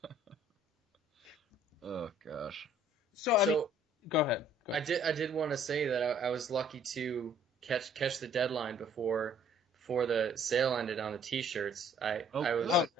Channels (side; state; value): both; normal; correlation 0.59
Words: Oh gosh. So go ahead. I did want to say that I was lucky to catch the deadline before the sale ended on the T-shirts. Really?